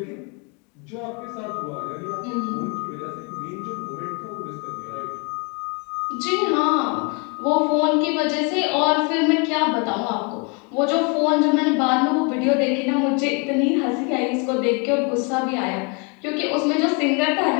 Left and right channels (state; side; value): quieter; right; 33.1 dB